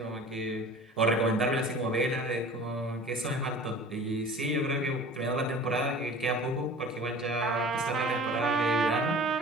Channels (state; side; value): normal; both; correlation 0.42